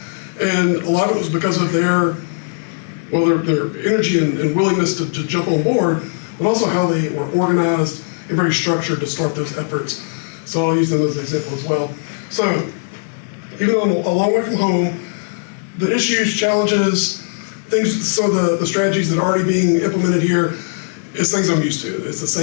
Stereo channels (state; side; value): silent; right; 67 dB below the other